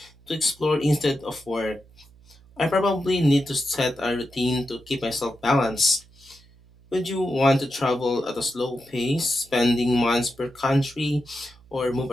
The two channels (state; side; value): noise; right; hum, 27 dB below the sound